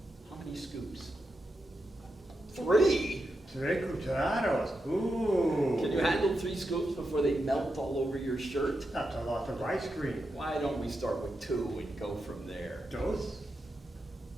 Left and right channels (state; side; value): normal; both; correlation 0.87